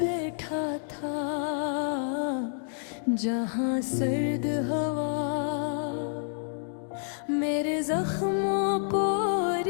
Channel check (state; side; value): silent; right; digital silence